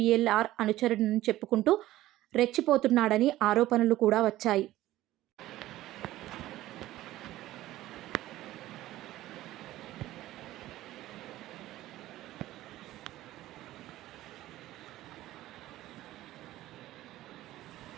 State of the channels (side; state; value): left; quieter; 15.4 dB